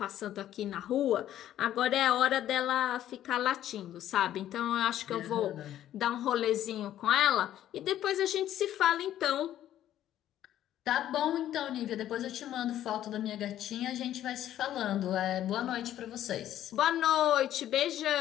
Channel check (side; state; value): right; quieter; 12.0 dB